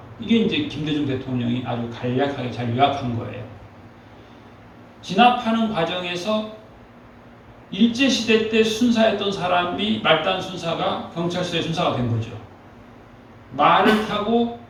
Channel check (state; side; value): identical; both; correlation 1.00